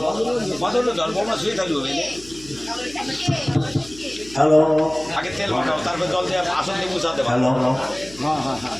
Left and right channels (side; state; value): left; noise; hum, 20 dB below the sound